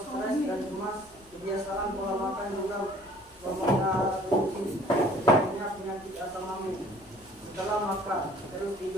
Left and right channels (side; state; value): both; normal; correlation 0.53